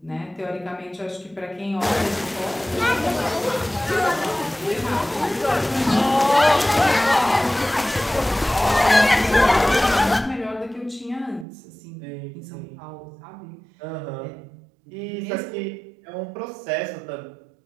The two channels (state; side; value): drops out; left; at 11.5 s